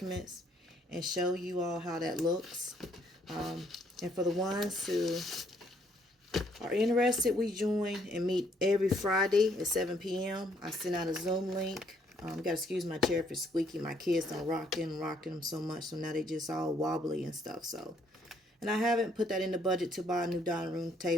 and show you all how that looks. And for the ones who are interested, we join and meet every Friday at 7 p.m. I send out a Zoom link. Gotta excuse my chair for squeaky. My kids done rocking them so much, so now they just all wobbly and stuff. So, and I haven't put that in the budget to buy a new dining room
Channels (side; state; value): both; normal; correlation 0.67